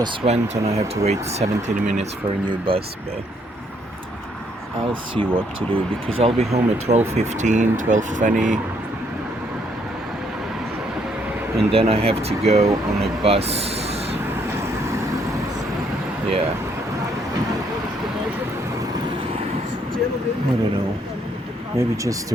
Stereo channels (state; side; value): normal; both; correlation 0.70